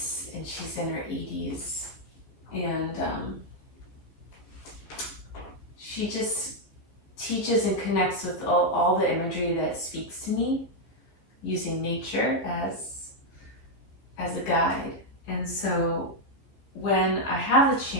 and she's in her 80s. And she just teaches and connects with all the imagery that speaks to me, using nature as a guide. And so when I have the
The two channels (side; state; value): right; late; 15 ms